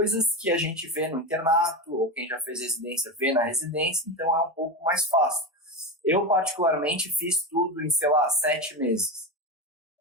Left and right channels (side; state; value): both; normal; correlation 0.18